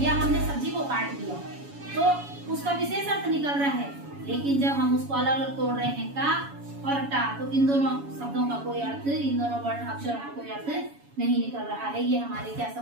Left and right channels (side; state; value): left; late; 7.1 ms